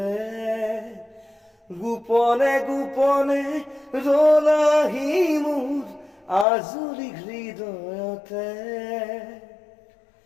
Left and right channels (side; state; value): right; drops out; at 6.5 s